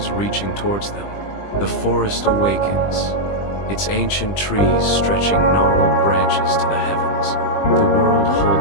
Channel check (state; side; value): late; right; 20 ms